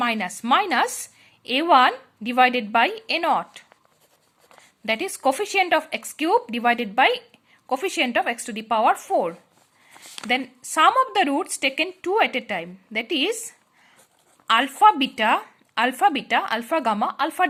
a1 divided by a naught, that is coefficient of x cube divided by coefficient of x to the power 4. Then sum of the roots taken two at a time, that is alpha beta, alpha gamma, alpha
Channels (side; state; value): both; identical; correlation 1.00